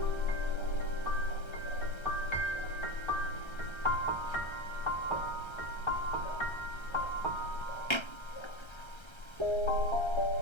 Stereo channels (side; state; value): right; late; 1.3 ms